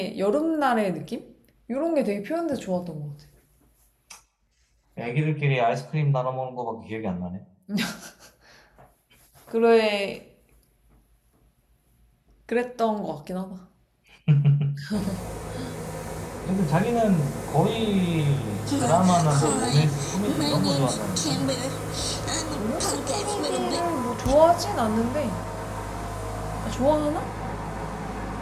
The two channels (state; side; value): identical; both; correlation 1.00